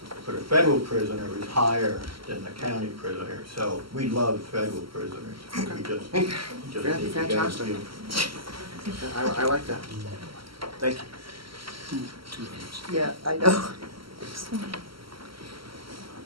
for the federal prisoner is higher than the county prisoner, so we love federal prisoners. We just need to get Fantastic. them. I like that. Thank you. Yeah, I know.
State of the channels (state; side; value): late; left; 0.74 ms